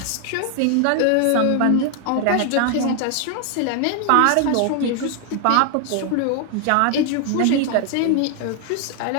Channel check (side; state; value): both; different; correlation 0.00